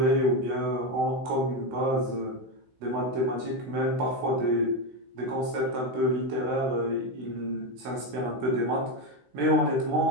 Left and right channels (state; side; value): late; left; 16 ms